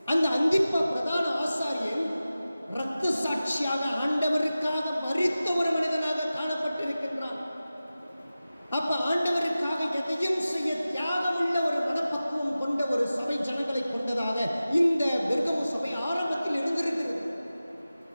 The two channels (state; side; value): inverted; both; correlation -0.95